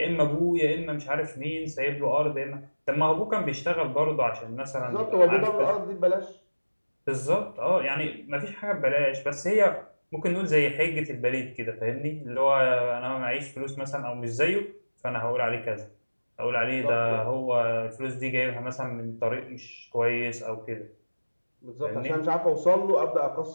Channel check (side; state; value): both; inverted; correlation -1.00